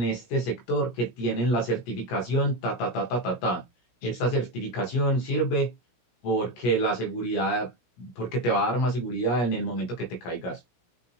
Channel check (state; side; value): late; right; 17 ms